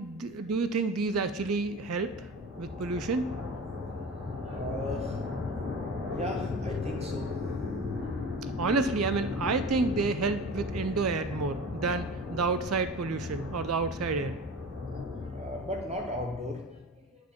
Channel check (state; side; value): normal; both; correlation 0.35